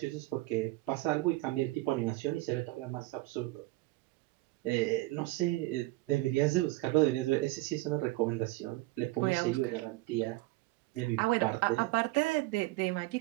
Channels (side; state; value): left; quieter; 20.5 dB